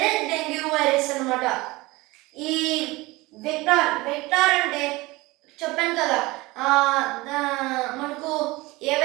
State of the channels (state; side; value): quieter; left; 21.5 dB